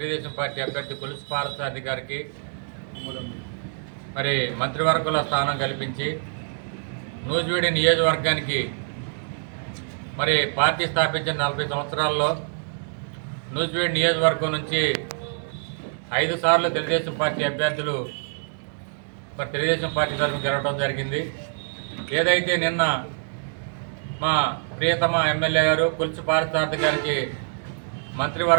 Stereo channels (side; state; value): left; silent; digital silence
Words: పార్టీ అభ్యర్థి కొలుసు పార్థసారథి గారికి మరి మంత్రివర్గంలో స్థానం కల్పించి నూజివీడు నియోజకవర్గానికి మరి పార్టీ స్థాపించిన 40 సంవత్సరాల్లో నూజివీడు నియోజకవర్గం నుంచి 5 సార్లు తెలుగుదేశం పార్టీ అభ్యర్థులు మరి తెలుగుదేశం పార్టీ తరఫున గెలవడం జరిగింది. ఏదైతే నిన్న మా ప్రియతమ ఎమ్మెల్యే గారు కొలుసు పార్థసారథి గారికి